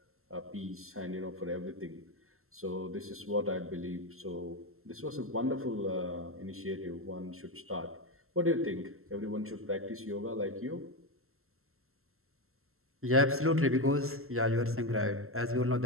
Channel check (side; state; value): left; late; 0.62 ms